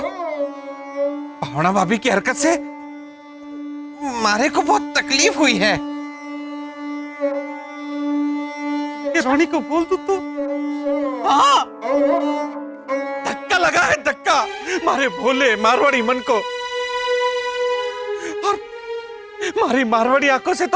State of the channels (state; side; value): identical; both; correlation 1.00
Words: भावना भाभी की हरकत से मारे को बहुत तकलीफ हुई है। ये रोनी को बोल दूं तो? हाँ, धक्का लगा है, धक्का मारे भोले मारवाड़ी मन को। और मारी मारवाड़ी आंखों से